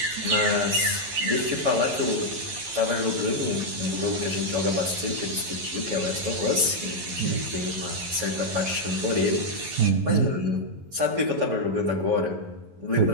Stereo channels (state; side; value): late; left; 11 ms